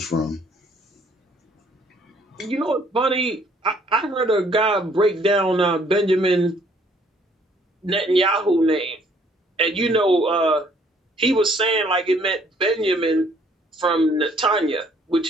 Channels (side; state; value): both; normal; correlation 0.63